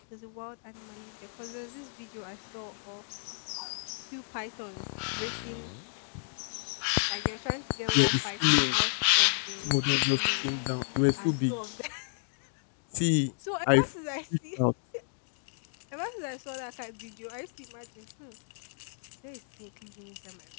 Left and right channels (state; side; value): silent; right; digital silence